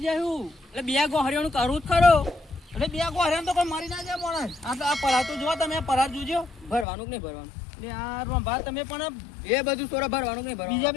જાય હું એટલે 2 ગોહરીઓનું કરવું જ ખરો એટલે બે ગોહરિયા તો કોઈ મરી ના જાય માણસ આ પરાર તો જો તમે પરાર જોજો ભરવાનું કે નહીં ભરવાનું એટલે આ રંભા તમે પણ એ બધું સોરા ભરવાનું કે નહીં ભરવાનું બીજા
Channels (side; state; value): right; drops out; at 6.9 s